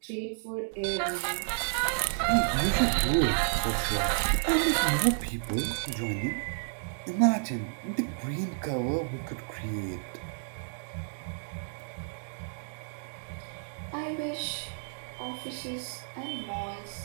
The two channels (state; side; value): silent; left; digital silence